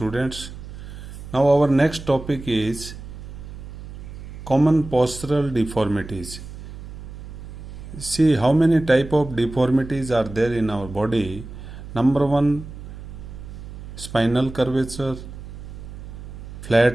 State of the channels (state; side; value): noise; right; hum, 12 dB below the sound